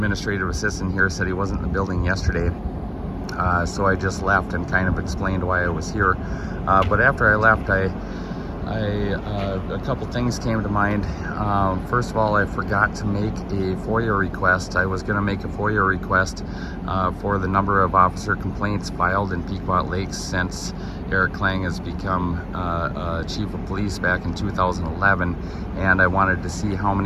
assistant here said he wasn't in the building yesterday, so I just left and kind of explained why I was here. But after I left, a couple things came to mind. First of all, I forgot to make a FOIA request. I was going to make a FOIA request for the number of officer complaints filed in Pequot Lakes since Eric Klang has become Chief of Police back in 2011, and I wanted to see how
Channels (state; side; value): identical; both; correlation 1.00